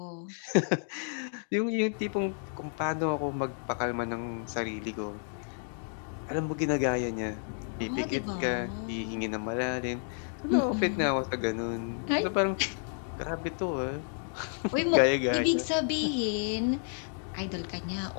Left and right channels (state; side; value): silent; right; 57 dB below the other